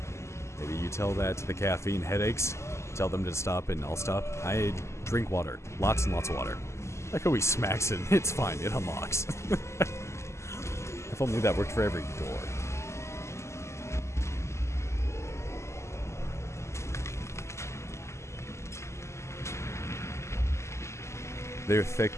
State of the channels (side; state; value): right; late; 0.13 ms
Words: Maybe you tell that to the caffeine headaches. Tell them to stop and I'll stop. I drink water. Lots and lots of water. Like how he smacks it. It's fine. It unlocks. If only that worked for every door. They're thick,